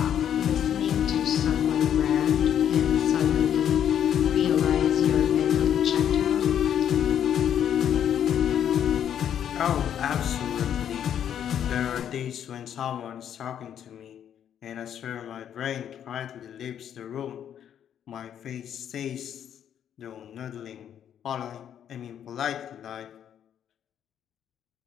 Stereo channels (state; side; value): quieter; right; 9.5 dB